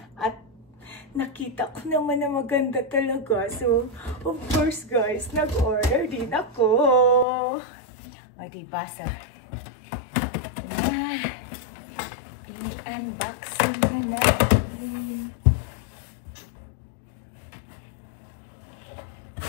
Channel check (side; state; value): right; drops out; at 7.2 s